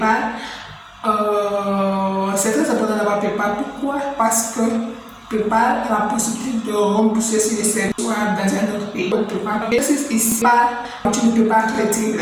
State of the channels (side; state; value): both; identical; correlation 1.00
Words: c'est très important d'avoir PayPal. Pourquoi? Parce que PayPal a la possibilité de rembourser si les services dans un autre pays. Donc, PayPal, ici, tu ne peux pas retirer